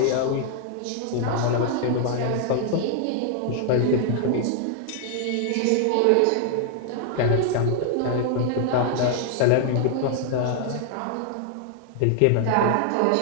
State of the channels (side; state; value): both; different; correlation 0.00